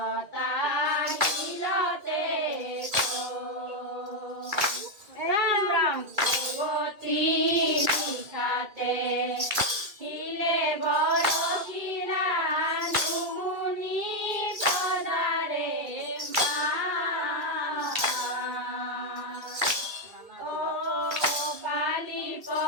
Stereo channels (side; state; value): left; late; 2.4 ms